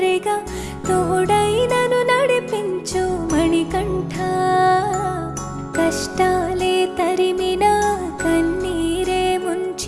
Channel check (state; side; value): identical; both; correlation 1.00